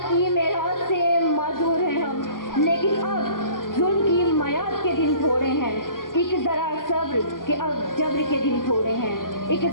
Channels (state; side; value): late; right; 0.91 ms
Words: کی میراث سے معذور ہیں ہم، لیکن اب ظلم کی میعاد کے دن تھوڑے ہیں، ایک ذرا صبر کہ اب جبر کے دن تھوڑے ہیں، ایک